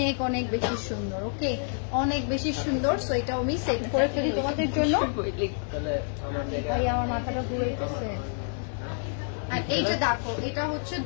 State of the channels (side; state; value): right; silent; 59 dB below the other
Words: অনেক বেশি সুন্দর। ওকে, অনেক বেশি সুন্দর। সো এটা আমি সেট করে ফেলি তোমাদের জন্য। ভাই আমার মাথাটা ঘুরাইতেছে। আর এই যে দেখো, এটা হচ্ছে